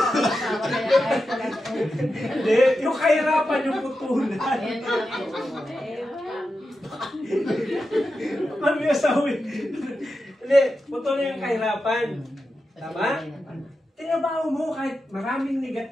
asawa kaya kahit wala ko. Hindi, yung kahirapan yung putulan. Ayan na ako. Ano yung asawa? Hindi, putulin yung kahirapan. Tama? Tinabaho mo kahit maraming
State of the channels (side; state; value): both; normal; correlation 0.90